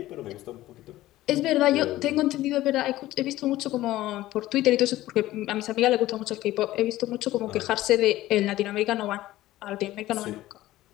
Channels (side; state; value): right; quieter; 15.9 dB